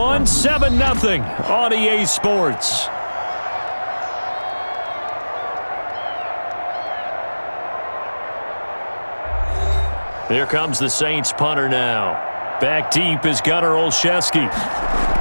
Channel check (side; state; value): both; inverted; correlation -1.00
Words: 7-0 on EA Sports. Here comes the Saints punter now. Back deep is Gunnar Olszewski.